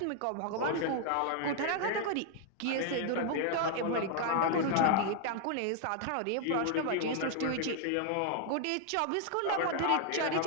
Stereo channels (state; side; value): different; both; correlation 0.00